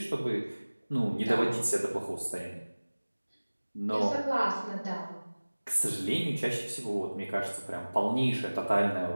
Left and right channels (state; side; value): inverted; both; correlation -1.00